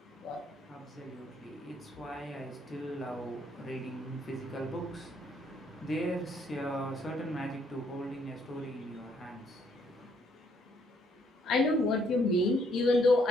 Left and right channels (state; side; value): normal; both; correlation 0.69